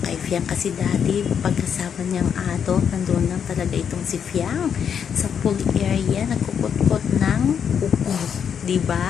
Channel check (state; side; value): quieter; right; 7.7 dB